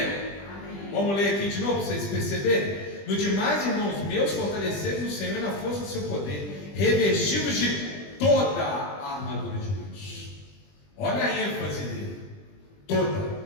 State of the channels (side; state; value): right; late; 20 ms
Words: Amém. Vamos ler aqui de novo para vocês perceberem. No demais, irmãos meus, fortalecei-vos no Senhor e na força do seu poder, revestidos de toda a armadura de Deus. Olha a ênfase dele: toda.